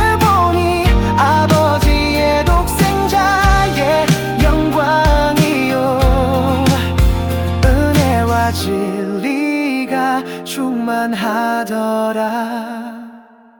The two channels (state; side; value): identical; both; correlation 1.00